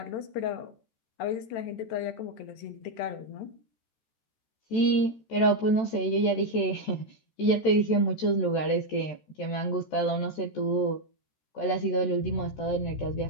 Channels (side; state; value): right; late; 13 ms